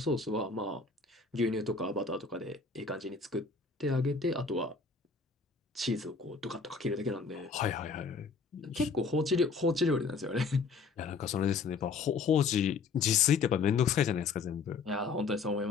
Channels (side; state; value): right; quieter; 4.7 dB